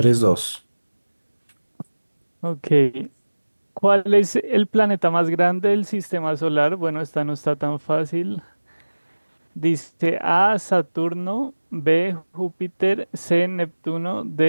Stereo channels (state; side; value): inverted; both; correlation -1.00